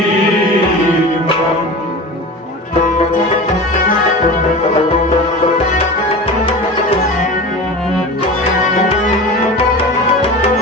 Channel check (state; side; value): normal; both; correlation 0.32